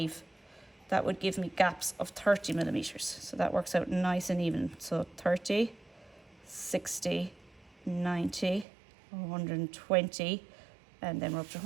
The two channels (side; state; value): left; drops out; at 8.7 s